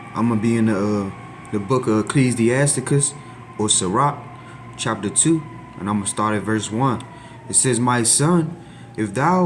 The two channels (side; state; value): both; identical; correlation 1.00